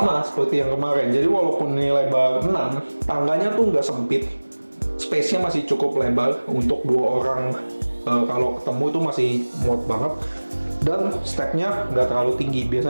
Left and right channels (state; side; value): inverted; both; correlation -1.00